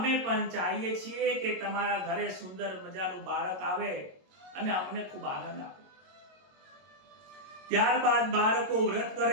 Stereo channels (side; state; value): left; late; 22 ms